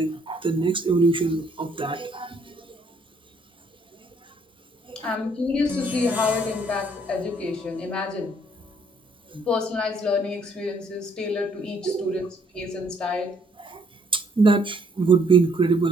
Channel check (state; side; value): normal; both; correlation 0.66